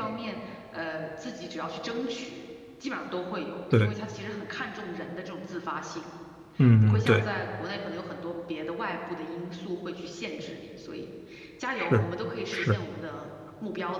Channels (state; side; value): identical; both; correlation 1.00